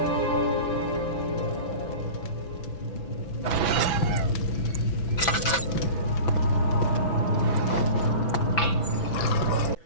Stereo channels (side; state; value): right; late; 6.0 ms